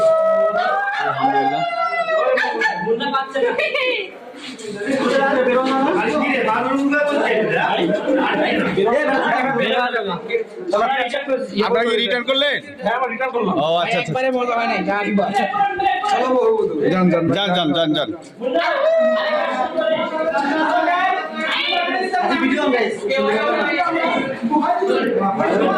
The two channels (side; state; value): both; identical; correlation 1.00